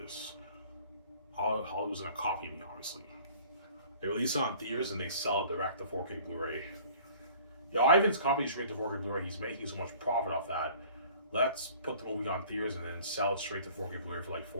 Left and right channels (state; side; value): inverted; both; correlation -0.50